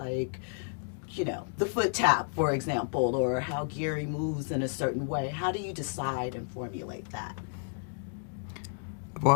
you know, the foot tap, for example, or how Gary moves in a certain way. How do you decide and formulate that?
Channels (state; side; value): silent; right; digital silence